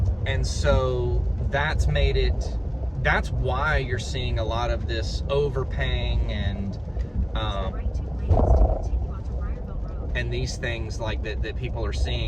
And so that's why you're seeing a lot of this overpaying and these things like that people are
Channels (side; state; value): both; identical; correlation 1.00